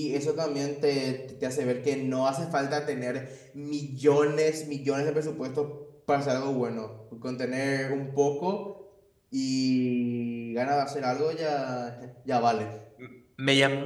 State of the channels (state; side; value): identical; both; correlation 1.00